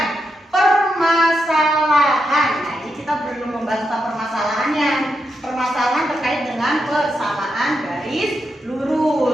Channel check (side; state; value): both; normal; correlation 0.84